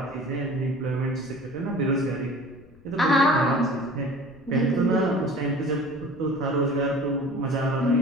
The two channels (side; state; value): left; noise; rumble, 26 dB below the sound